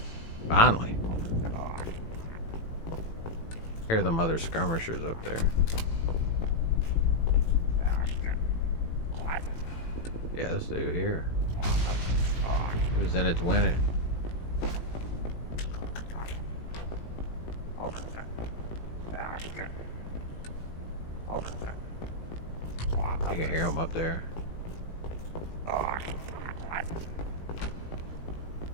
Finally. Hear them other skirmishers up there. Yeah, this dude here. He was in it to win it. You can hear him up there.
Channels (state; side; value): late; right; 18 ms